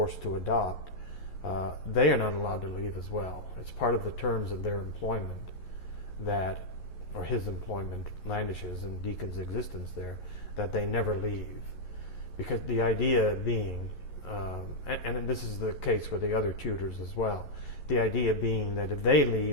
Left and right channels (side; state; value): right; late; 11 ms